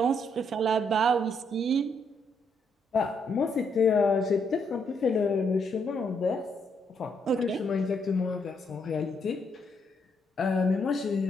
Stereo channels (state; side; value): normal; both; correlation 0.74